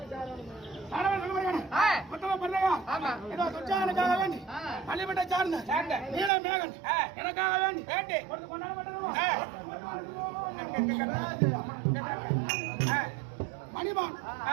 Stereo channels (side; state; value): left; drops out; at 6.3 s